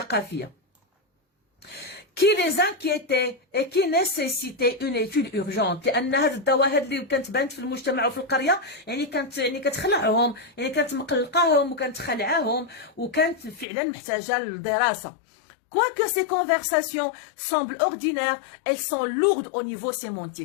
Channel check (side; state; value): right; drops out; at 13.7 s